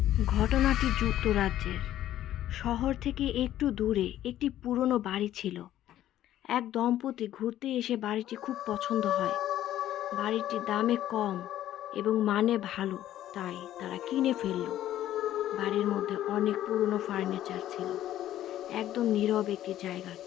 ঘটনাটি যুক্তরাজ্যের। শহর থেকে একটু দূরে একটি পুরনো বাড়ি ছিল। এক দম্পতি ঘুরতে এসে বাড়িটি খুব পছন্দ হয়। বাড়িটি দামে কম এবং মানে ভালো, তাই তারা কিনে ফেলল। বাড়ির মধ্যে অনেক পুরনো ফার্নিচার ছিল। একদম নীরব একটি জায়গা,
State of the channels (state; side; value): quieter; right; 12.7 dB